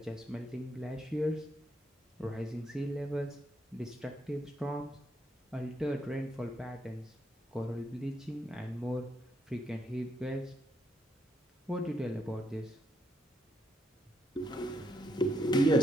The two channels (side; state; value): both; normal; correlation 0.76